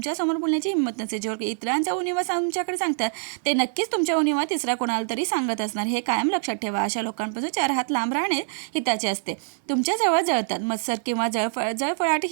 बोलण्याची हिंमत नसते. जे इतरांचा उणीवा तुमच्याकडे सांगतात ते नक्कीच तुमच्या उणीवा तिसरा कोणाला तरी सांगत असणार. हे कायम लक्षात ठेवा. अशा लोकांपासून 4 हात लांब राहणे हिताचे असते. तुमच्या जवळ जळतात. मत्सर किंवा जळफळाट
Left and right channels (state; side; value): silent; left; digital silence